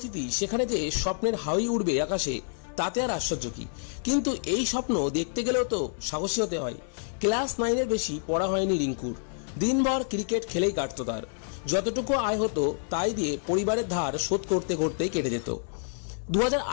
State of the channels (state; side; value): silent; right; 59 dB below the other